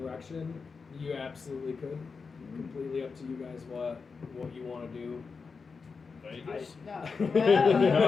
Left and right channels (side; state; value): right; quieter; 5.0 dB